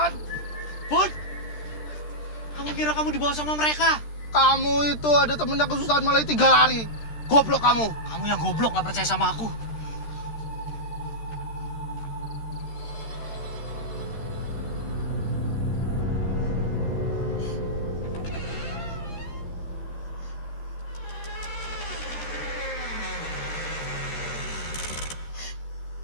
Bud, kamu kira kamu dibawa sama mereka? Kamu itu ada temennya kesusahan malah tinggal lari. Goblok kamu. Kamu yang goblok nggak percaya sama aku.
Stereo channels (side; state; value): right; late; 13 ms